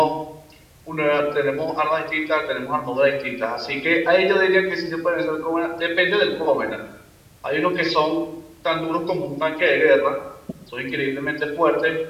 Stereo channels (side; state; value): both; identical; correlation 1.00